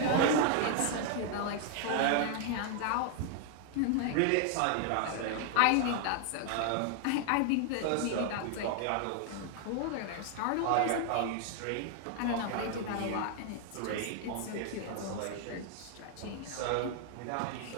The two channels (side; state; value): both; different; correlation 0.00